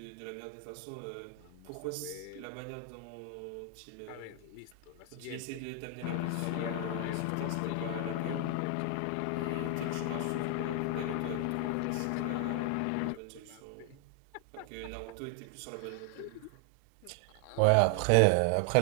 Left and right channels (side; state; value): both; different; correlation 0.00